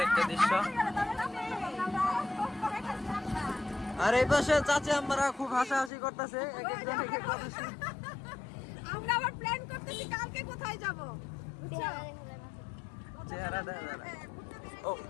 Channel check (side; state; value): right; drops out; at 5.9 s